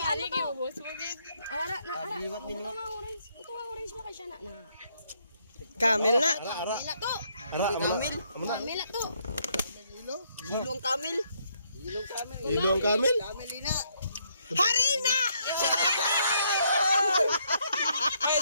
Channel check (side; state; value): both; inverted; correlation -0.72